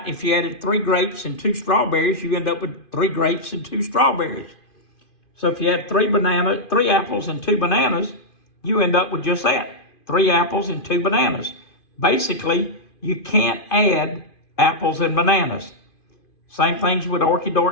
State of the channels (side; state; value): right; late; 2.5 ms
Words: if you added 3 grapes and 2 strawberries, you end up with 3 grapes and 2 strawberries. So if you had 3 apples and 2 bananas, you end up with just that, 3 apples and 2 bananas. Basically, you can't add apples and bananas. Same things with